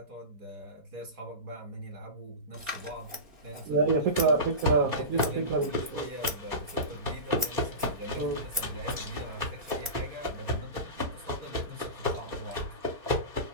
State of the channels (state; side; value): late; left; 4.2 ms